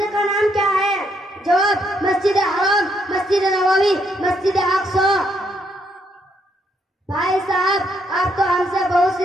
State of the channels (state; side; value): normal; both; correlation 0.74